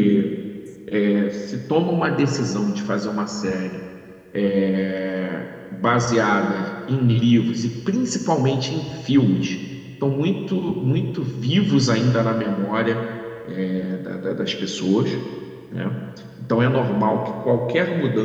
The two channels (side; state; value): both; identical; correlation 1.00